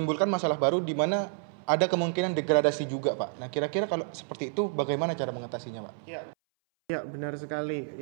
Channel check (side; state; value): left; silent; 58 dB below the other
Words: masalah baru di mana ada kemungkinan degradasi juga, Pak. Nah, kira-kira kalau seperti itu bagaimana cara mengatasinya, Pak? Ya, benar sekali